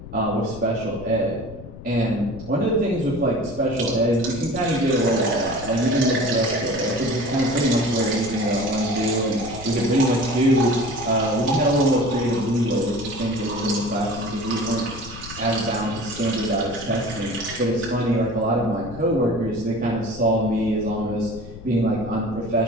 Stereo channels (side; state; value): left; noise; rumble, 13 dB below the sound